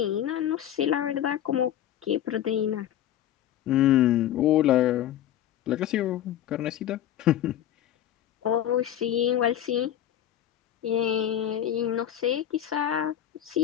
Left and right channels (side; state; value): right; quieter; 11.3 dB